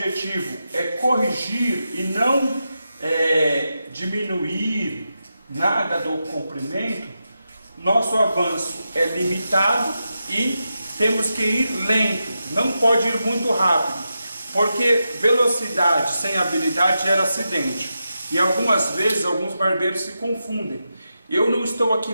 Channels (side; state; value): both; inverted; correlation -0.88